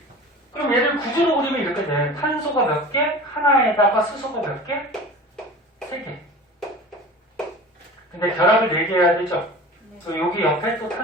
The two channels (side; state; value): both; normal; correlation 0.37